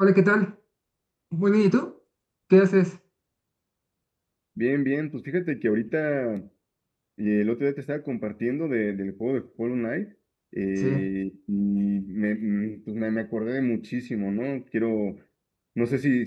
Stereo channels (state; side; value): identical; both; correlation 1.00